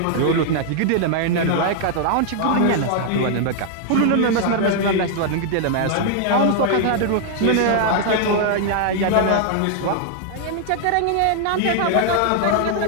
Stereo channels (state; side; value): different; both; correlation 0.00